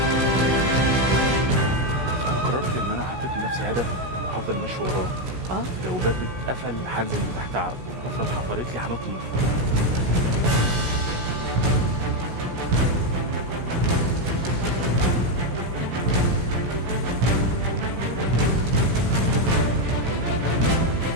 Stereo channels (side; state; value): left; late; 16 ms